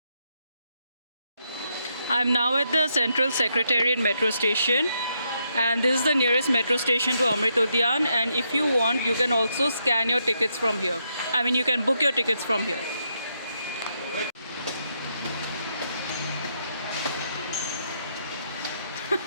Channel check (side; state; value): both; inverted; correlation -0.79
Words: I'm now at the Central Secretariat metro station, and this is the nearest metro station to Amrit Udyan, and if you want, you can also scan your tickets from here. I mean, you can book your tickets from here.